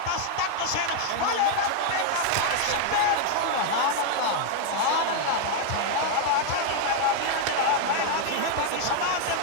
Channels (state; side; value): different; both; correlation 0.00